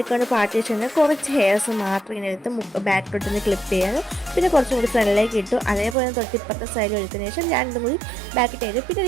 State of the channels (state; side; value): drops out; left; at 6.0 s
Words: പാർട്ടീഷൻ കുറച്ച് ഹെയർസ് മാത്രം ഇങ്ങനെ എടുത്ത് ബാക്കിലോട്ടൊന്ന് ക്ലിപ്പ് ചെയ്യാൻ, പിന്നെ കുറച്ചും കൂടി ഫ്രണ്ടിലേക്ക് ഇട്ടു. അതേപോലെ തൊട്ടിപ്പുറത്തെ സൈഡിൽ എടുത്തതിന് ശേഷം രണ്ടും കൂടി ബാക്കിട്ട് ചെയ്തു. പിന്നെ